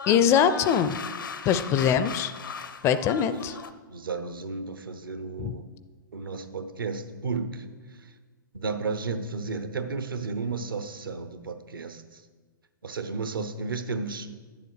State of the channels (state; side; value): quieter; right; 4.5 dB